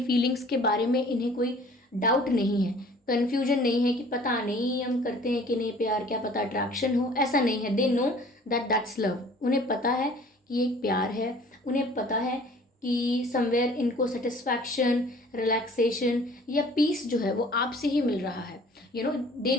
फीलिंग्स के बारे में इन्हें कोई डाउट नहीं है, कन्फ्यूजन नहीं है कि पता नहीं हम करते हैं कि नहीं प्यार, क्या पता अट्रैक्शन हो, ऐसा नहीं है। They know that that's love. उन्हें पता है कि ये एक प्यार है, उन्हें पता है कि समवेयर इनको सेटिस्फैक्शन, रिलैक्सेशन या पीस जो है वो आपसे ही मिल रहा है। They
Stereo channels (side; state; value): both; normal; correlation 0.51